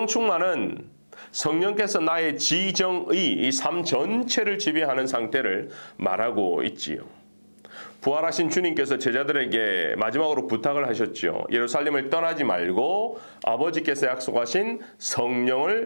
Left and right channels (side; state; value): both; inverted; correlation -1.00